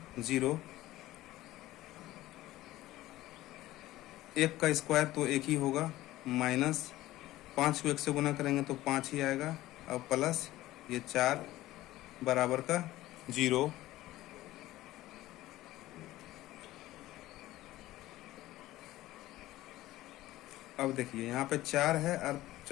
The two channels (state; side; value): quieter; right; 16.2 dB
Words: 0। 1 का स्क्वायर तो 1 ही होगा, -5 को 1 से गुना करेंगे तो 5 ही आएगा और प्लस ये 4 बराबर का 0। अब देखिए यहाँ पे 4 है और